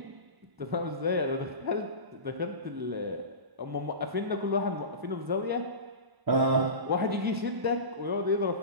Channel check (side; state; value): left; late; 1.0 ms